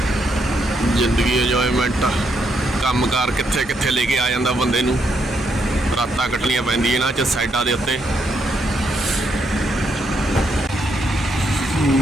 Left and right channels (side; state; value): both; normal; correlation 0.77